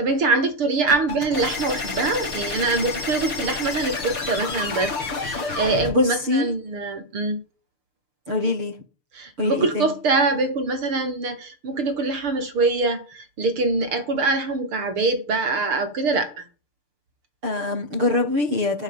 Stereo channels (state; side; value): late; left; 6.7 ms